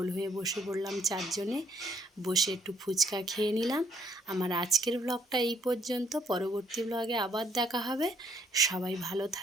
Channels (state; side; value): normal; both; correlation 0.66